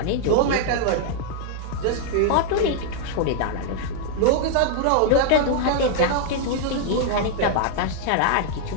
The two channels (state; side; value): different; both; correlation -0.01